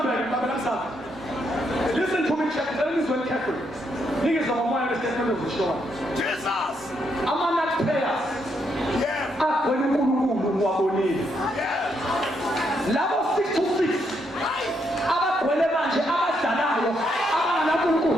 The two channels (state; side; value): normal; both; correlation 0.77